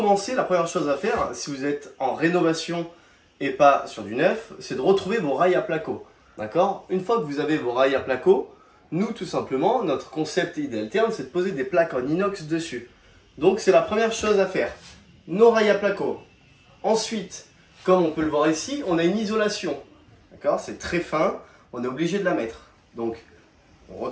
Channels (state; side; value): identical; both; correlation 1.00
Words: la première chose à faire, si vous êtes en rénovation et pas sur du neuf, c'est de retrouver vos rails à placo. D'accord? Une fois que vous avez vos rails à placo, nous tout simplement, notre concept Idealtherm, c'est de poser des plaques en inox dessus. Donc c'est la première chose à faire. Nos rails à placo. Ensuite, comme on peut le voir ici, on a une isolation. D'accord? C'est très fin, on est obligé de la mettre. Donc, on